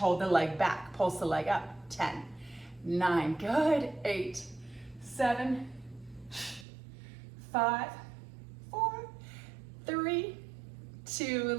the leg back, pulse the leg up. 10, 9, good. 8, 7, 5, 4, 3, 2,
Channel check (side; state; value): left; drops out; at 6.7 s